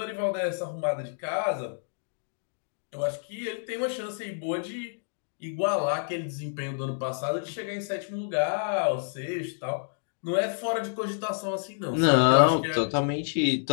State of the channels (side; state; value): right; silent; digital silence